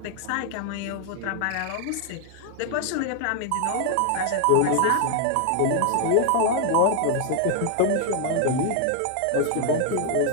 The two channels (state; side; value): different; both; correlation 0.00